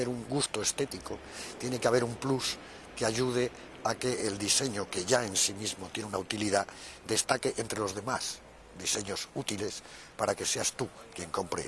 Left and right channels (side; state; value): both; identical; correlation 1.00